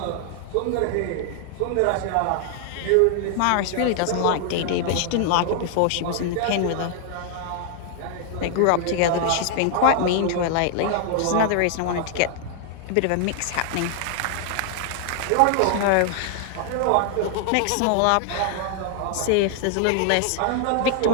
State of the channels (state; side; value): different; both; correlation 0.00